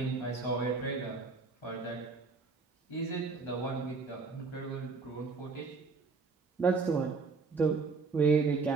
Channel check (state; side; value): quieter; left; 4.3 dB